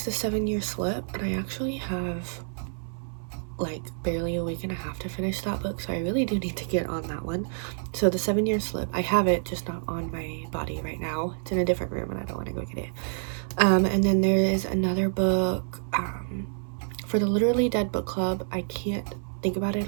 The 7-Year Slip, and I actually have like barely a week and a half to finish that book, so I really do need to get on that one. So The 7-Year Slip, I have it, just not on my body right now. It's in a different room and I don't want to go get it. And then there is another book for the Literally Dead book club. I can't think about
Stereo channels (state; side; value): silent; left; 59 dB below the other